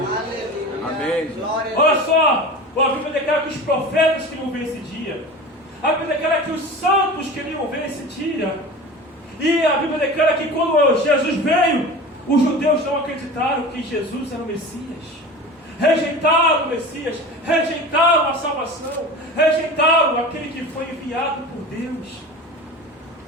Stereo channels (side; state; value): both; normal; correlation 0.34